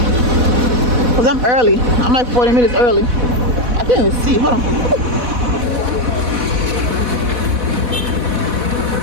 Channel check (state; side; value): late; left; 4.1 ms